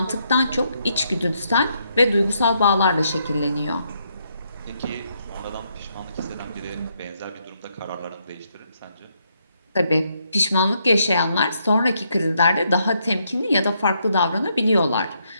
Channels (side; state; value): both; inverted; correlation -0.76